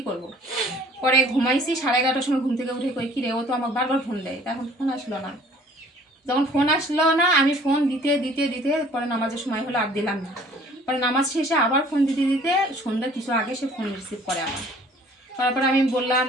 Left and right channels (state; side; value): normal; both; correlation 0.54